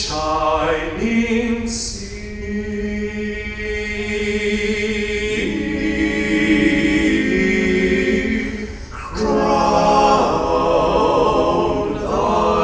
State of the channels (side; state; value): both; identical; correlation 1.00